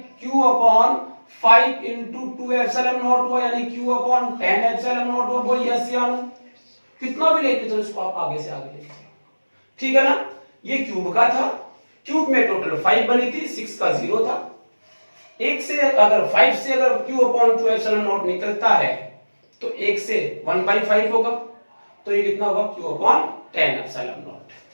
Q upon 5 into 2 epsilon not हुआ, यानी Q अपॉन 10 एप्सिलॉन नॉट हुआ। बोल यस या नो, कितना भी लेते चलो इसको आप आगे से आगे लेते, ठीक है ना। ये क्यूब का था, क्यूब में टोटल 5 बनी थी, 6 का 0 था, एक से अगर 5 से अगर q अपॉन 2 एप्सिलॉन नॉट निकलता है तो 1 से 1/5 होगा, तो ये कितना होगा q अपॉन 10 एप्सिलॉन नॉट।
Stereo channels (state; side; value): inverted; both; correlation -1.00